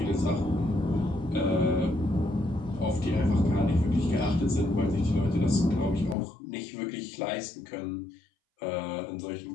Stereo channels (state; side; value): drops out; right; at 6.2 s